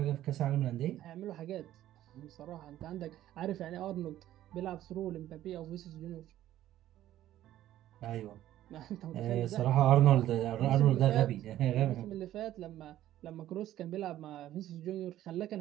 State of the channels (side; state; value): left; quieter; 13.2 dB